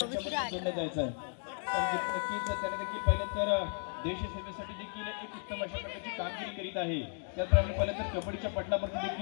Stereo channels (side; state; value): right; silent; 55 dB below the other